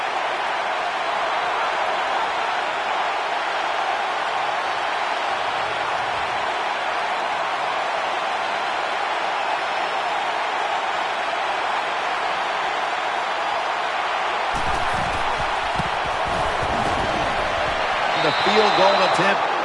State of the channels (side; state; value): both; identical; correlation 1.00